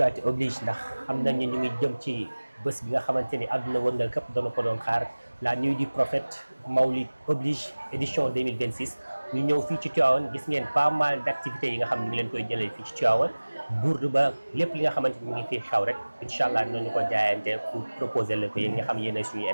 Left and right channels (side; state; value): both; inverted; correlation -1.00